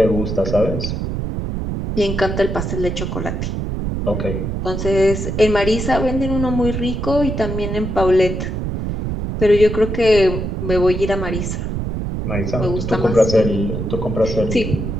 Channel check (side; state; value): right; noise; rumble, 3 dB below the sound